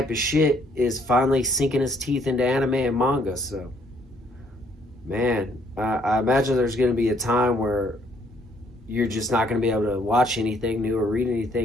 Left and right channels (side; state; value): both; normal; correlation 0.65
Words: of shit is finally sinking its teeth into anime and manga. So, man, I imagine there's going to be a time where you're just not going to be able to watch anything new or read